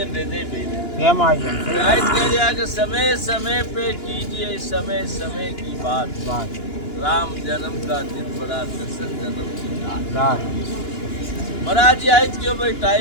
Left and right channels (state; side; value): late; right; 2.9 ms